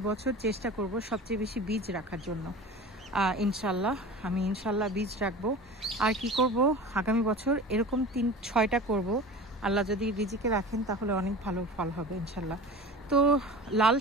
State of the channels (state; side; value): normal; both; correlation 0.36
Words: চেষ্টা করব সবচেয়ে বেশি বীজ রাখার জন্য। ইনশাল্লাহ আমি ইনশাল্লাহ বীজ রাখবো। আর কি করব, আগামী বছর এরকম 3-6টা করব, আল্লাহ যদি রিজিকে রাখেন তাহলে অনেক ভালো ফল হবে ইনশাল্লাহ। তো লাল